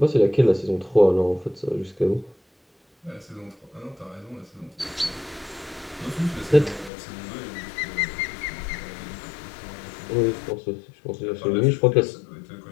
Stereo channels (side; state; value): right; drops out; at 6.9 s